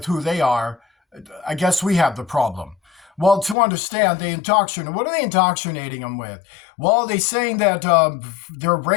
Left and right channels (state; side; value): drops out; right; at 3.6 s